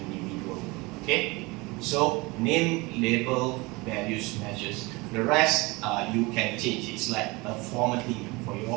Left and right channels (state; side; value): quieter; left; 24.2 dB